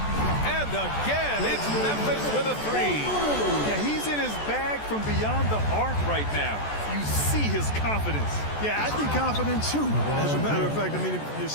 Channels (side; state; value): right; late; 14 ms